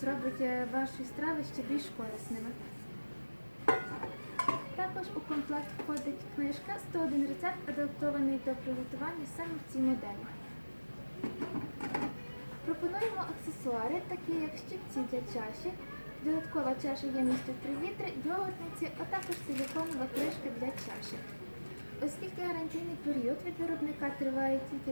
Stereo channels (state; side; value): inverted; both; correlation -1.00